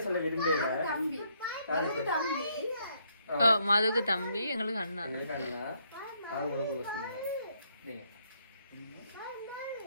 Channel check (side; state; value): both; inverted; correlation -0.72